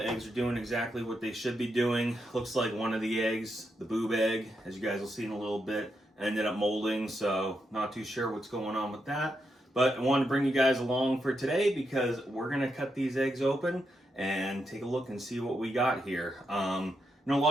eggs are doing exactly what they should be doing. Looks like one of the eggs, the boob egg, as you guys will see in a little bit, ended up molding, so not too sure what's going on with that. But I wanted to bring you guys along for today because we're going to cut these eggs open and take a look and see what we got here. I know a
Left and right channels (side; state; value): both; normal; correlation 0.83